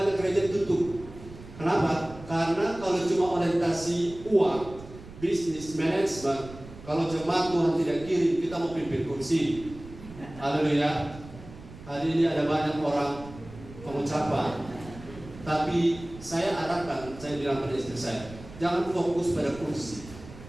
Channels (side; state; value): right; noise; rumble, 16 dB below the sound